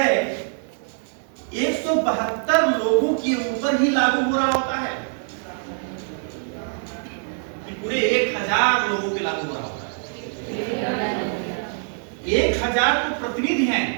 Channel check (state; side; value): silent; left; 60 dB below the other